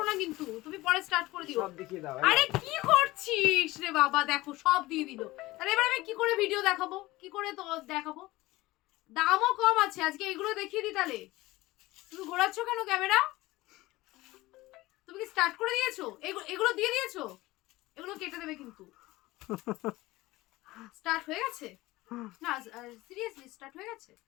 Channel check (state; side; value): quieter; right; 19.1 dB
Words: না, কিন্তু তুমি পরে স্টার্ট করে দিও। সব দেখিয়ে দাও। আরে কি করছিস রে বাবা, দেখো সব দিয়ে দিল। তাহলে এবার আমি কি করে ভিডিও দেখাবো, কি করে তো দেখাবো? দামও কম আছে আজকে, এগুলো দেখিয়ে দিই। তাহলে তুমি ঘোরাচ্ছ কেন ক্যামেরা? তুমি কি স্টার্ট করে দিয়েছো? এগুলো দিয়ে দিয়েছো? এগুলো কেটে দেবে কিন্তু। স্টার্ট হয়ে গেছে না? সিরিয়াসলি স্টার্ট হয়ে গেছে?